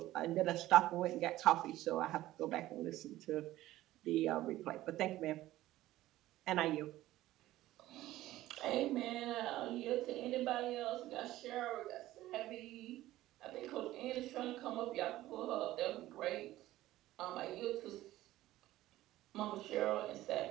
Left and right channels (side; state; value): left; quieter; 15.6 dB